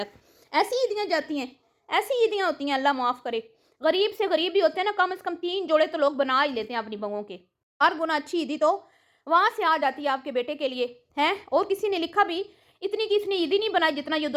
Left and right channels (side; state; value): both; identical; correlation 1.00